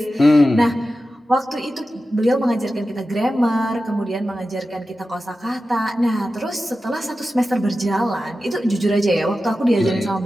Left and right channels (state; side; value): normal; both; correlation 0.93